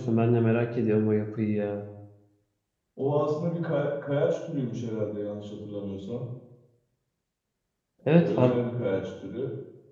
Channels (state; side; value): identical; both; correlation 1.00